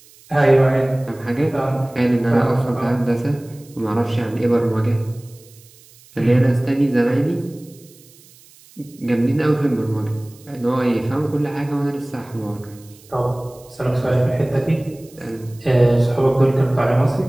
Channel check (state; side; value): noise; right; hiss, 26 dB below the sound